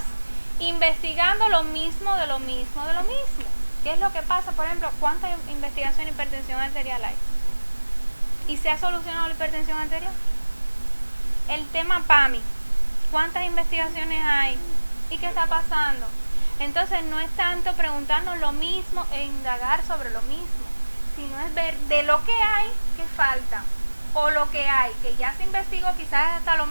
investigando lo mismo de lo mismo de lo mismo. ¿Qué es lo que pasa? Por ejemplo, ¿cuánta investigación en hipertensión arterial hay? ¿Y se ha solucionado la hipertensión arterial? El tema PAMI, ¿cuántas investigaciones hay? ¿Y qué está pasando? Entonces no es tanto preguntarnos lo mismo e indagar sobre lo mismo, sino es ver de lo que hay, qué falta, o lo que hay, que ya se investigó quizás hasta lo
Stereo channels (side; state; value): both; inverted; correlation -1.00